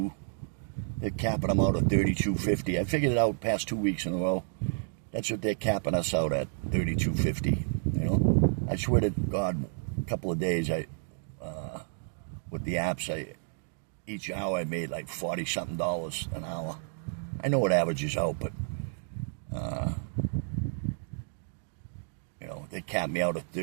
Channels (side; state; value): left; silent; digital silence